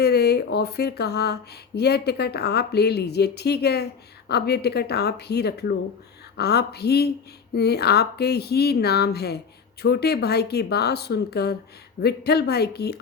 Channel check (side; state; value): right; quieter; 6.0 dB